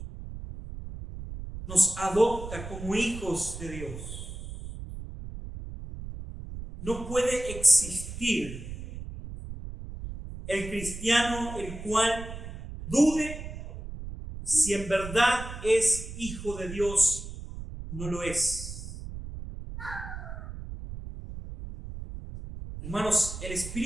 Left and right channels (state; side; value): noise; right; rumble, 10 dB below the sound